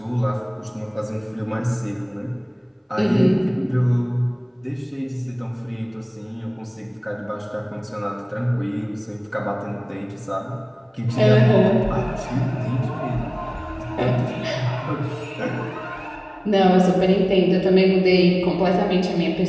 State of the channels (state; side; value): identical; both; correlation 1.00